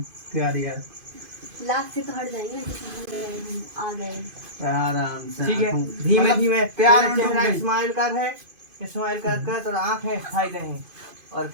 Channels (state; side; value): late; left; 2.5 ms